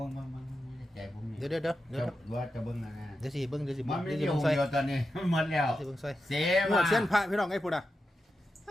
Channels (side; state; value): both; normal; correlation 0.89